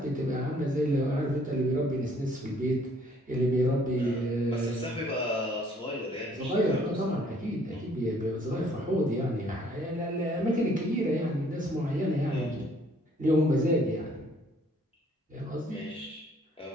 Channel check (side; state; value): both; normal; correlation 0.61